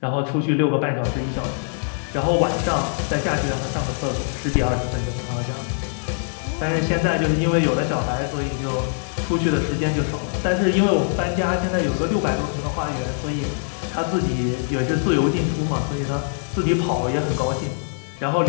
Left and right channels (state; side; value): silent; right; 58 dB below the other